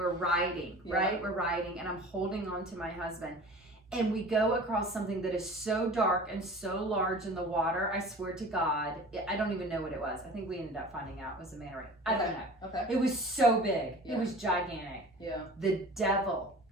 riding, right? We're riding and I'm holding on to my husband. And we go across something that is so dark and so large in the water. I swear to God, I don't even know what it was. I think we ended up finding out it was a manta ray. I don't know. Okay. It was so big. Yeah. It was gigantic. Yeah. The devil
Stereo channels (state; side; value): normal; both; correlation 0.41